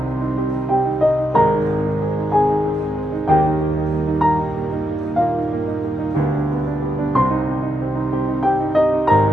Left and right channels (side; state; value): both; normal; correlation 0.82